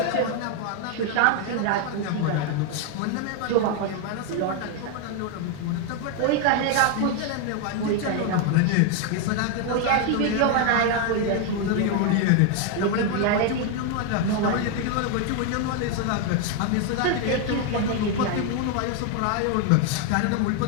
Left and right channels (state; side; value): different; both; correlation 0.01